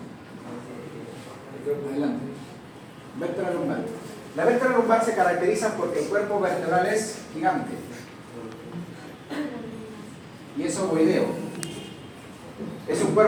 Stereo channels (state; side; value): identical; both; correlation 1.00